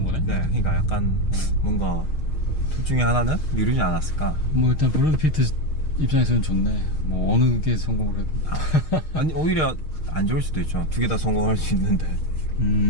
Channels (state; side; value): late; right; 6.5 ms